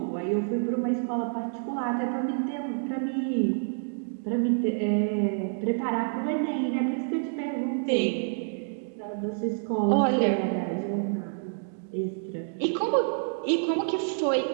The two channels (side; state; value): left; silent; digital silence